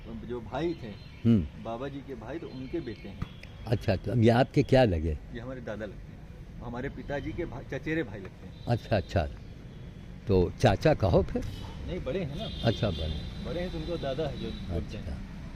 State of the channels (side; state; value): both; identical; correlation 1.00